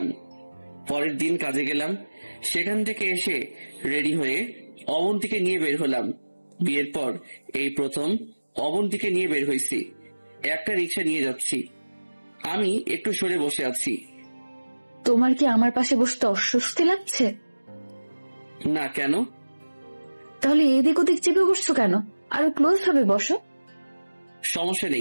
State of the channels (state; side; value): inverted; both; correlation -1.00